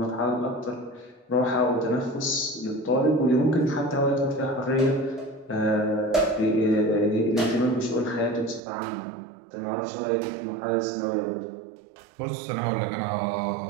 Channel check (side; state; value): left; drops out; at 8.6 s